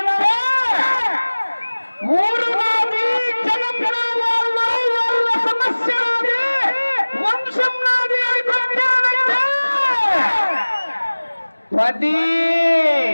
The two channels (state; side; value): inverted; both; correlation -1.00